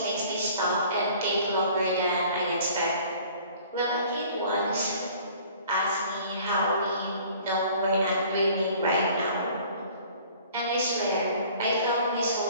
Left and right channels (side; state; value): both; inverted; correlation -0.51